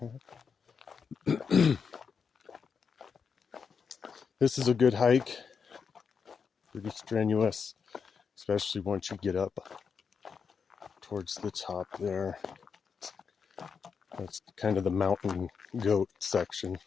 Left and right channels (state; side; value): quieter; right; 6.1 dB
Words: This is a good hike. Pretty strenuous, especially once you get up towards the top there. That's kind of the mountain goat section,